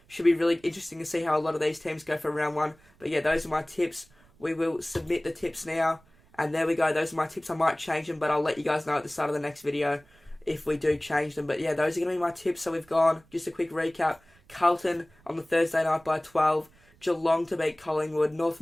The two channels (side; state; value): right; noise; rumble, 30 dB below the sound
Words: Should be really interesting to see how a lot of these teams go for round one. But yeah, those are my tips. We will submit the tips now. And there we go. Those are my tips. I might change them, but I'll let you guys know at the start of the next video if we do change them. But yeah, those are going to be my tips. So we've gone, just a quick recap. Carlton on the Thursday night by 12. Geelong to beat Collingwood. North